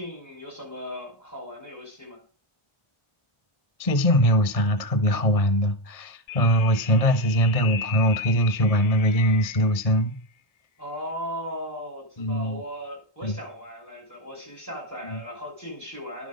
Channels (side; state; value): right; late; 1.6 ms